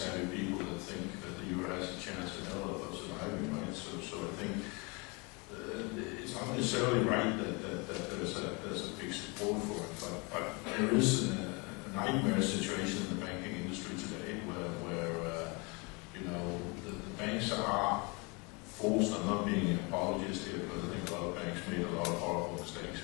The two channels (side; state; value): right; quieter; 29.5 dB